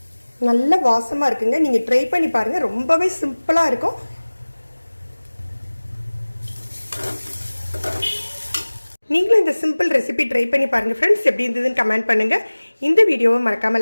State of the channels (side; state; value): both; inverted; correlation -1.00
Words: நல்ல வாசமாக இருக்குங்க. நீங்கள் ட்ரை பண்ணி பாருங்கள். ரொம்பவே சிம்பிளாக இருக்கும். நீங்களும் இந்த சிம்பிள் ரெசிபி ட்ரை பண்ணி பாருங்கள் ஃப்ரெண்ட்ஸ். எப்படி இருந்ததுன்னு கமெண்ட் பண்ணுங்கள். இந்த வீடியோவை